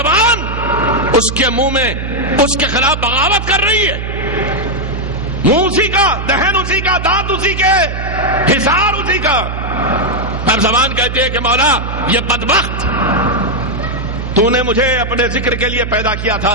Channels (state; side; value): noise; right; hum, 5 dB below the sound